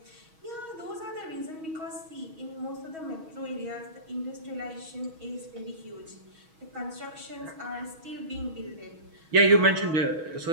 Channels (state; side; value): late; left; 6.3 ms